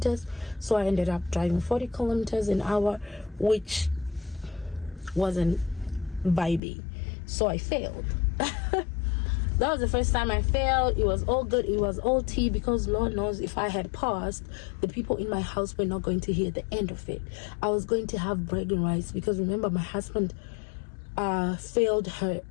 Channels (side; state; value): right; drops out; at 6.6 s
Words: So I ended up driving 40 kilometers an hour, which wasn't vibey. So I failed. That was the first time I failed. It was all good. It was all tea, because Lord knows if I had passed, the people in my house were not going to hear the end of it. I was going to have bragging rights, because remember, my husband failed